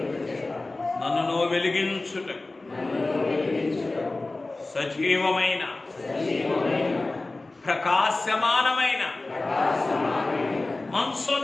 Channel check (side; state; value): right; quieter; 3.1 dB